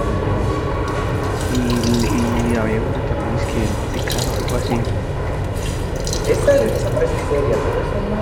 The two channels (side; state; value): both; identical; correlation 1.00